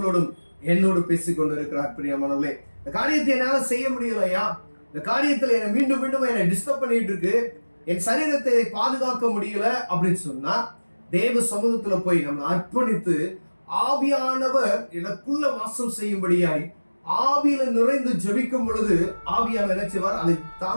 என்னோடு பேசிக் கொண்டு இருக்கிறார். பிரியமானவர்களே, இந்த காரியத்தை என்னால செய்ய முடியலையா, இந்த காரியத்துல என்னை மீண்டும் மீண்டும் என்னை டிஸ்டர்ப் பண்ணிட்டு இருக்கு, என் சரீரத்தை பாதுகாக்க முடியல அப்படின்னு சொன்னா, தேவ சமூகத்துல போய் நம்ம அர்ப்பணித்து ஆவியானவர் எனக்குள்ள வாசம் செய்யும்படியாய் ஆவியில நிறைந்து ஜெபிக்கும் பொழுது ஆவியானவர் என்ன செய்வார், அதை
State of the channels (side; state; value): both; inverted; correlation -1.00